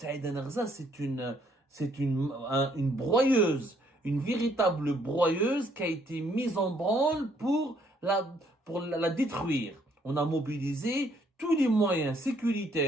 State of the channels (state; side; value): normal; both; correlation 0.67